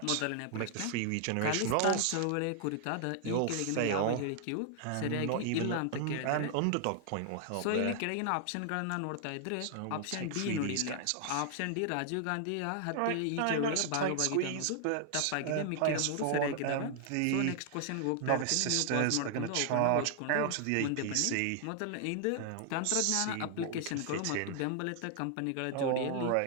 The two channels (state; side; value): different; both; correlation 0.00